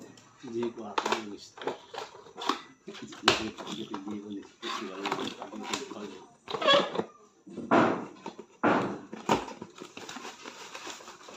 Hindi ko ako gusto.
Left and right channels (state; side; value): identical; both; correlation 1.00